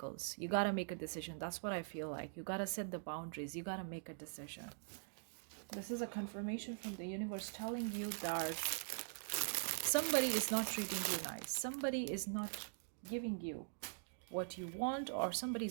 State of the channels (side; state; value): left; silent; digital silence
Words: you got to make a decision. That's what I feel like. You got to set the boundaries, you got to make a decision. This is a confirmation from the universe telling you that somebody is not treating you nice, somebody is not giving you what you want, or somebody